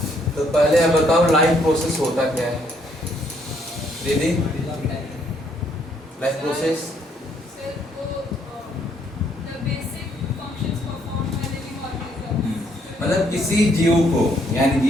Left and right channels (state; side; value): normal; both; correlation 0.70